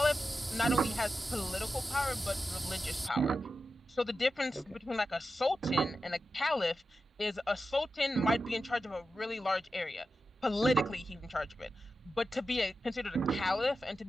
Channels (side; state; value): both; normal; correlation 0.91